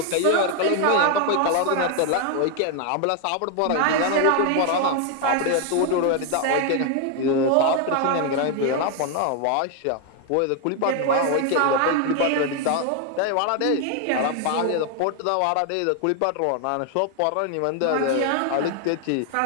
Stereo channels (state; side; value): different; both; correlation 0.01